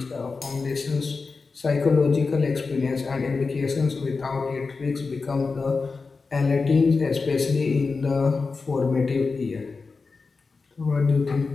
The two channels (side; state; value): right; quieter; 4.4 dB